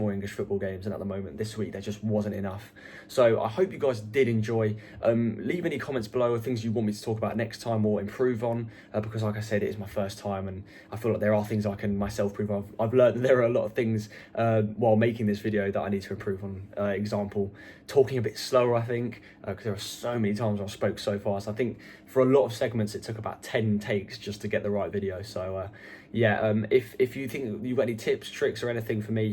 English football games, and at the moment this week there just wasn't enough. So I hope you guys did enjoy. Leave any comments below, or things you want me to talk about next time or improve on, because like I said, it is my first time, and I feel like there are things I can myself improve on. I've learned that there are a lot of things while making this video that I need to improve on. Example, talking a bit slower, I think, because there are so many times I spoke so fast. I think for a lot of segments it took about 10 takes just to get the right video. So yeah, if you think you've got any tips, tricks or anything for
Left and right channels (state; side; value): identical; both; correlation 1.00